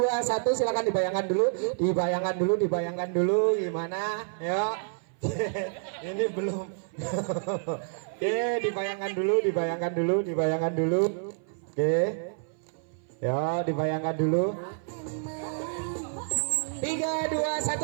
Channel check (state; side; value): silent; left; 56 dB below the other